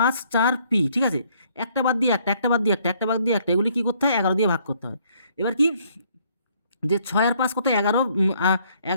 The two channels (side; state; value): both; inverted; correlation -0.65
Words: 4 পি, ঠিক আছে, একটা বাদ দিয়ে একটা বাদ দিয়ে একটা বাদ দিয়ে একটা, এগুলি কী করতে হয় 11 দিয়ে ভাগ করতে হয়। এবার কি যে 6 আর 5 কত 11,